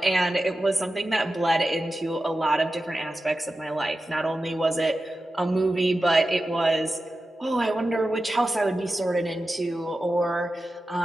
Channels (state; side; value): normal; both; correlation 0.92